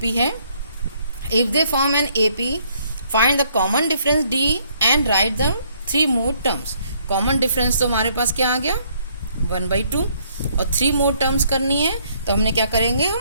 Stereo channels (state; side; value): inverted; both; correlation -0.67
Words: है। If they form an AP find the common difference D and write the 3 more terms. Common difference तो हमारे पास क्या आ गया 1/2, और 3 मोर टर्म्स करनी है, तो हमने क्या करेंगे,